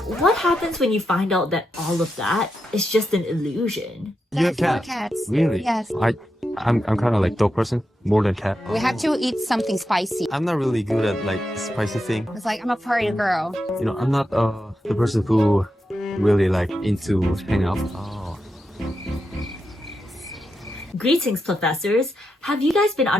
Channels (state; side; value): normal; both; correlation 0.87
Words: what happens when you find out that all of that is just an illusion? You have cats? Cats. Really? Yes. I'm kind of like dog person more than cat. We have to eat something spicy. I'm not really good at like spicy thing. It's like I'm a party girl. You know, I'm not the person who really like into hang out. Oh. Greetings, Plofessors! Have you guys been